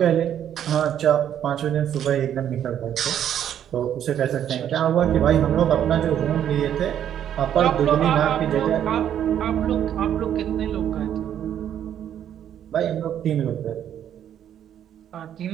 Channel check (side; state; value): left; quieter; 10.0 dB